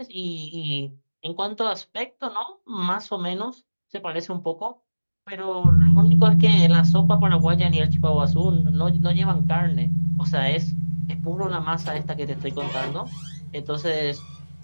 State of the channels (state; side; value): inverted; both; correlation -1.00